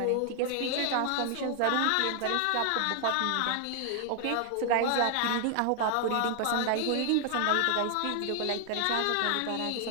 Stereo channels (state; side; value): different; both; correlation 0.00